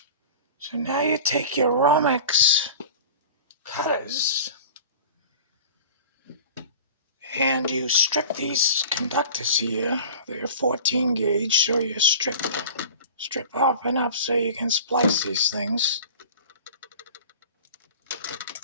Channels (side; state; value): both; inverted; correlation -0.39